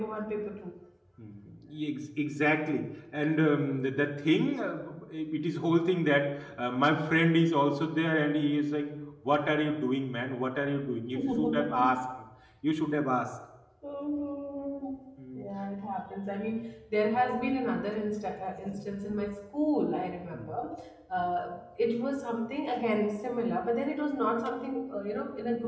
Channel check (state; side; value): identical; both; correlation 1.00